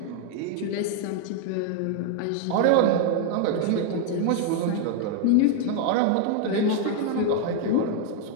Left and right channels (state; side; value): different; both; correlation 0.00